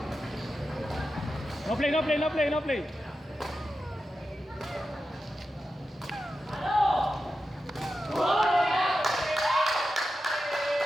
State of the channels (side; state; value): both; normal; correlation 0.91